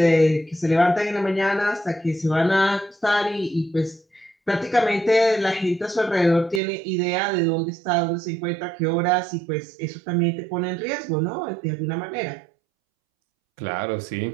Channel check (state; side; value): drops out; left; at 6.6 s